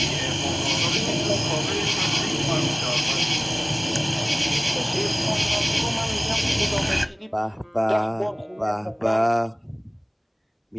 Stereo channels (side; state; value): both; identical; correlation 1.00